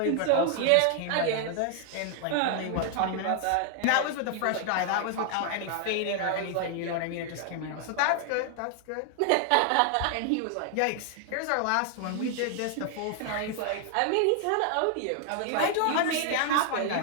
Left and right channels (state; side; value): different; both; correlation 0.00